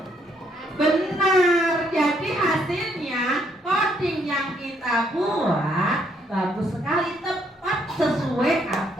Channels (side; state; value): both; normal; correlation 0.71